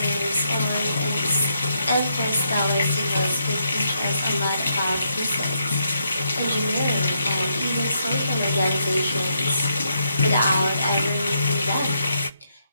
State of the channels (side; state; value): both; inverted; correlation -0.78